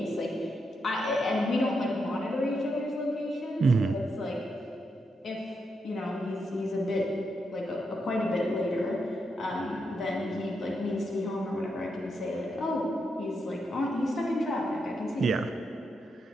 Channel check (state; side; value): normal; both; correlation 0.83